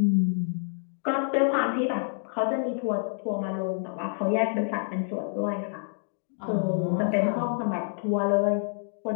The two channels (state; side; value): silent; right; digital silence